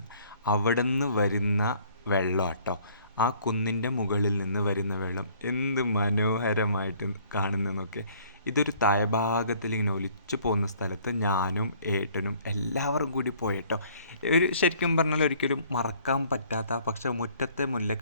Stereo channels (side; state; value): both; inverted; correlation -0.57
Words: അവിടെ നിന്ന് വരുന്ന വെള്ളം കേട്ടോ, ആ കുന്നിൻ്റെ മുകളിൽ നിന്ന് വരുന്ന വെള്ളം എന്ത് മനോഹരമായിട്ട് കാണുന്നതെന്നൊക്കെ. ഇതൊരു താഴ്ഭാഗത്തിൽ ഇങ്ങനെ ഒലിച്ചു പോകുന്ന സ്ഥലത്ത് ഞാനും ഏട്ടനും എല്ലാവരും കൂടി പോയിട്ടോ. ശരിക്കും പറഞ്ഞാൽ ഒരിക്കലും മറക്കാൻ പറ്റാത്ത, പക്ഷേ മുറ്റത്തെ